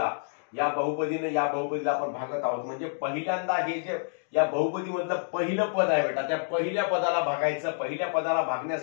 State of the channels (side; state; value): right; silent; digital silence